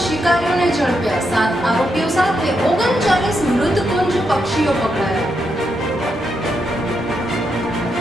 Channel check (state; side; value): normal; both; correlation 0.82